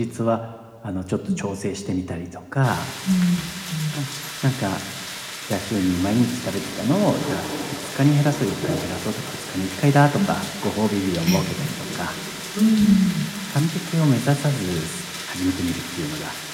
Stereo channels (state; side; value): identical; both; correlation 1.00